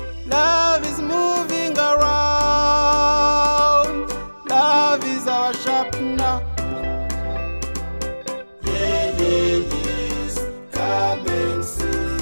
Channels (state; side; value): inverted; both; correlation -1.00